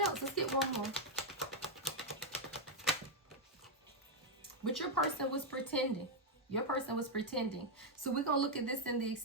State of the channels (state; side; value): normal; both; correlation 0.00